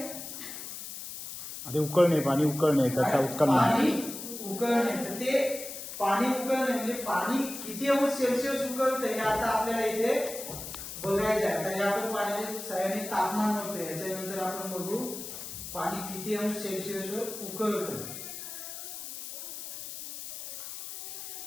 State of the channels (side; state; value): left; noise; hiss, 9 dB below the sound